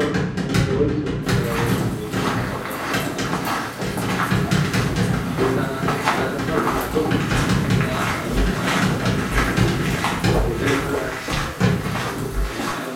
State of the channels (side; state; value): both; identical; correlation 1.00